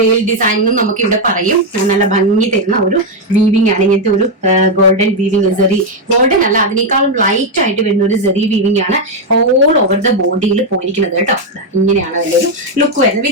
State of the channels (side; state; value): both; normal; correlation 0.03